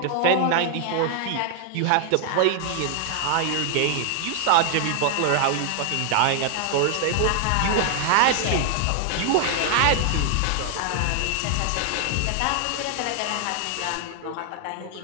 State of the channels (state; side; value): different; both; correlation 0.00